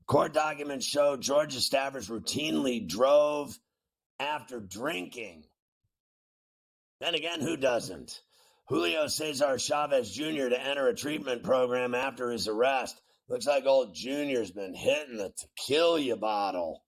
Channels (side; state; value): both; identical; correlation 1.00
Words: Court documents show Georgia staffers routinely drove after drinking. Then again, who doesn't? Julio Cesar Chavez Jr. to enter a treatment program after his arrest. Looks like old Junior's been hitting the tequila bottle.